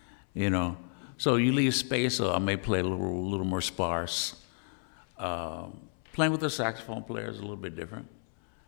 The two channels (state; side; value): silent; right; 57 dB below the other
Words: you know. So you leave space, so I may play a little more sparse. Playing with a saxophone player is a little bit different,